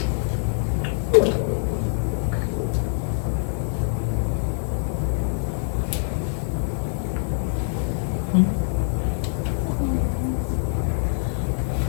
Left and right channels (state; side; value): silent; right; 62 dB below the other